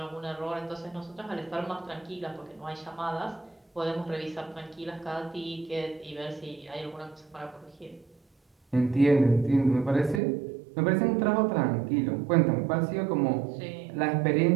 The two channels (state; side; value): drops out; left; at 10.2 s